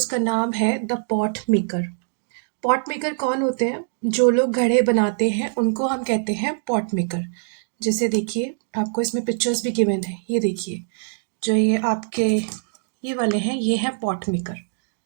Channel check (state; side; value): silent; left; digital silence